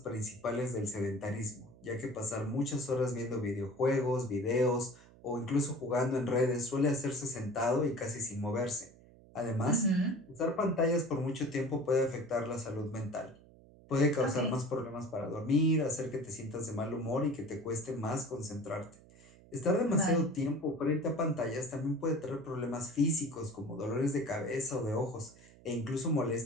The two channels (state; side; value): noise; right; hum, 23 dB below the sound